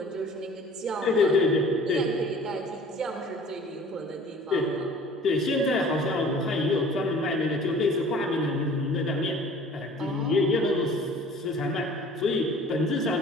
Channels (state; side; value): normal; both; correlation 0.48